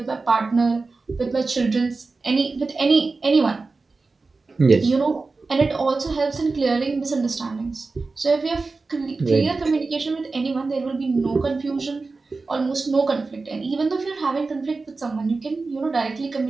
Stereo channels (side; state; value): left; quieter; 3.9 dB